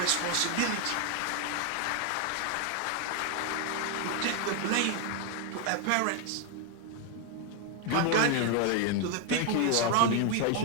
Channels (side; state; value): both; different; correlation 0.01